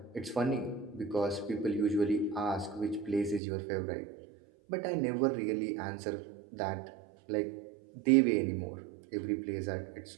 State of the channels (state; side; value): drops out; left; at 3.4 s